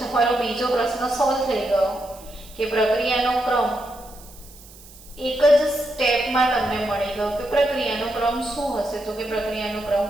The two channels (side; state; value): right; noise; hiss, 21 dB below the sound